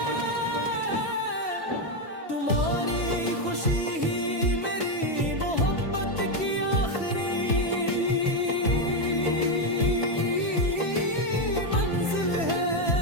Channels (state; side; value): late; right; 3.1 ms